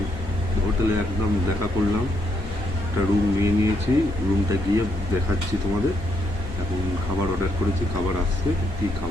হোটেলে একদম দেখা করলাম, একটা রুম নিয়ে নিয়েছি, রুমটা গিয়ে দেখাচ্ছি তোমাদের। এখন খাবার অর্ডার করেছি, খাবার আসছে, কী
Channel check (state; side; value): normal; both; correlation 0.76